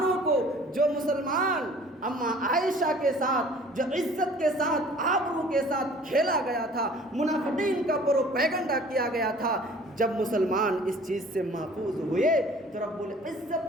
کو، جو مسلمان اماں عائشہ کے ساتھ، جو عزت کے ساتھ، آبرو کے ساتھ کھیلا گیا تھا، منافقین کا پروپیگنڈا کیا گیا تھا، جب مسلمان اس چیز سے محفوظ ہوئے تو رب العزت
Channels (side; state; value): both; normal; correlation 0.50